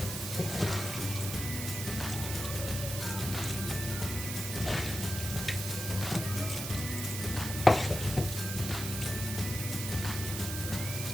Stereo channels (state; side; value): noise; right; hiss, 5 dB below the sound